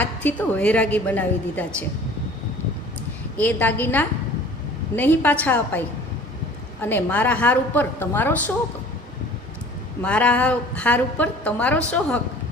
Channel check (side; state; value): both; normal; correlation 0.47